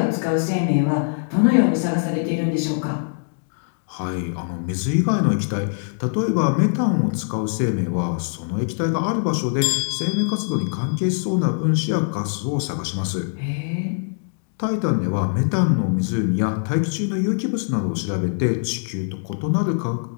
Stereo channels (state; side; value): silent; right; 64 dB below the other